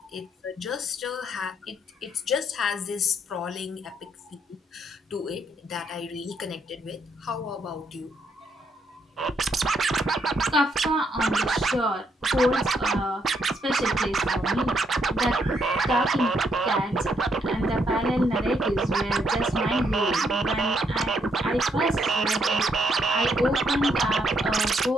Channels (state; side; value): normal; both; correlation 0.74